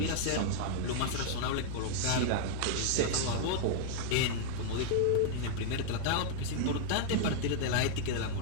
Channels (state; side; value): different; both; correlation -0.01